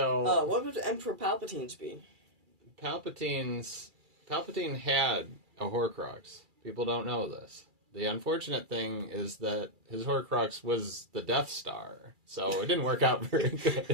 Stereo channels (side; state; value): left; late; 2.4 ms